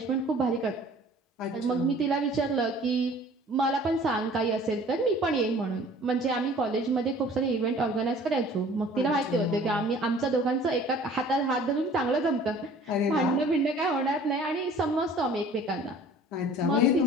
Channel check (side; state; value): both; normal; correlation 0.49